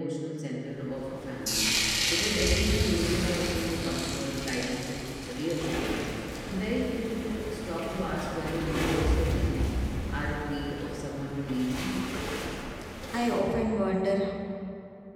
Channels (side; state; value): both; identical; correlation 1.00